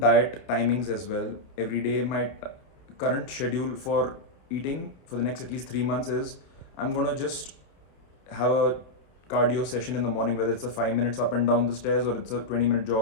timings as well. Every day, my current schedule for eating for the next at least 3 months is I'm gonna just have a cardio session in the morning, whether it's a 5 minutes up and down the stairs or it's a 20-minute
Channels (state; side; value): late; right; 29 ms